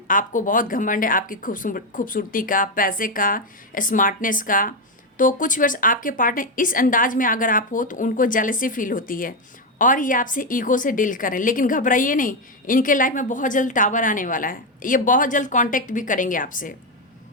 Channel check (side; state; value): both; normal; correlation 0.07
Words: आपको बहुत घमंड है आपकी खूबसूरती का, पैसे का, स्मार्टनेस का, तो कुछ व्यूअर्स आपके पार्टनर इस अंदाज में अगर आप हो तो उनको जेलसी फील होती है और ये आपसे ईगो से डील करें। लेकिन घबराइए नहीं, इनके लाइफ में बहुत जल्द टावर आने वाला है, ये बहुत जल्द कांटेक्ट भी करेंगे आपसे,